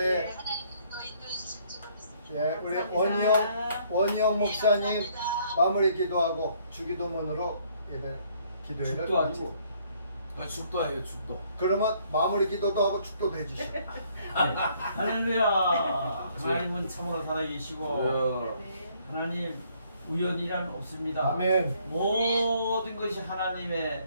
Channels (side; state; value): both; inverted; correlation -0.65